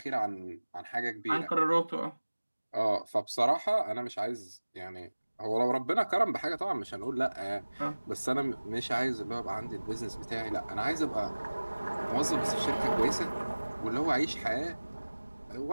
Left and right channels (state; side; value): inverted; both; correlation -1.00